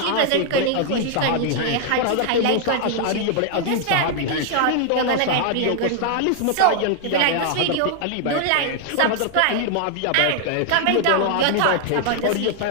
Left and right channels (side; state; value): both; different; correlation 0.00